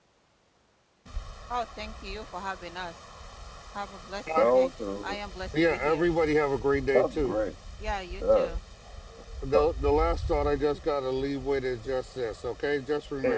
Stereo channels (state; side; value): identical; both; correlation 1.00